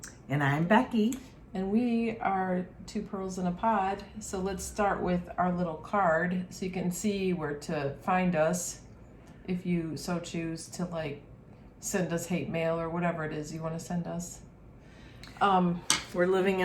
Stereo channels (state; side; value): identical; both; correlation 1.00